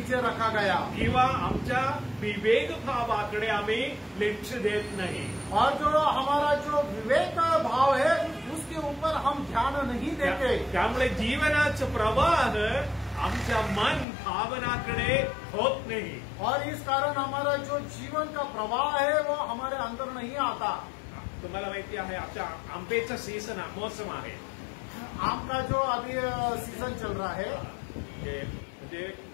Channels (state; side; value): drops out; right; at 14.1 s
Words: रखा गया. किंवा आमच्या विवेक भावाकडे आम्ही लक्ष देत नाही. और जो हमारा जो विवेक भाव है उसके ऊपर हम ध्यान नहीं देते. त्यामुळे जीवनाचं प्रवाह आमच्या मन भावनाकडे होत नाही. और इस कारण हमारा जो जीवन का प्रवाह है वो हमारे अंदर नहीं आता. तुम्हाला माहिती आहे आमच्या आंब्याचा सीझन मौसम आहे. आम का जो अभी सीजन चल रहा है. म्हणजे